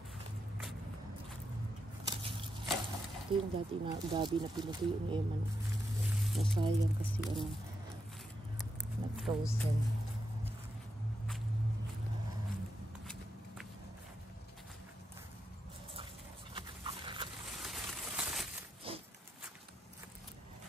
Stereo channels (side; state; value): both; normal; correlation 0.84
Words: Ito yung dati na gabi na pinutuyo ni Emma. Nasayang kasi nag-frozen.